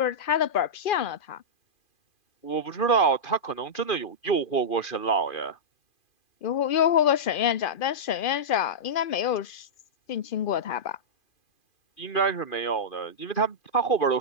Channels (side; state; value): right; late; 2.4 ms